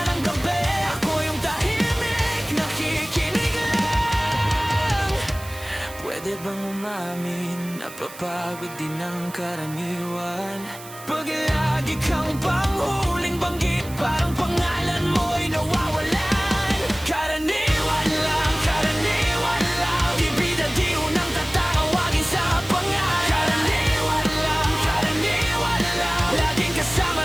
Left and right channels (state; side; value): noise; right; hiss, 16 dB below the sound